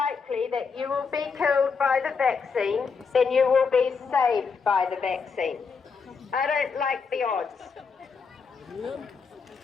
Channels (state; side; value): quieter; right; 5.3 dB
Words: that you will be killed by the vaccine than you will be saved by the vaccine. I don't like the odds.